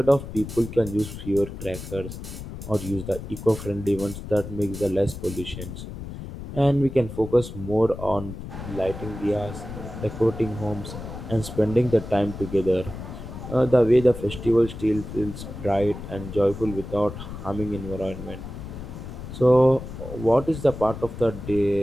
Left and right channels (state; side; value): noise; left; rumble, 10 dB below the sound